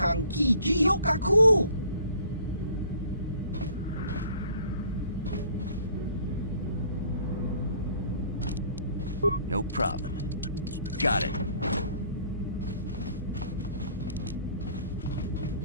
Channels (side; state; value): both; inverted; correlation -0.55